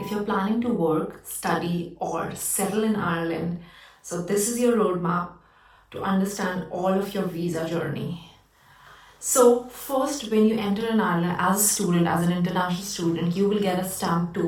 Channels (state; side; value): identical; both; correlation 1.00